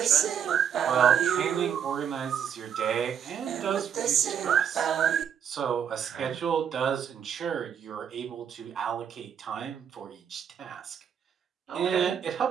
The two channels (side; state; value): left; quieter; 8.2 dB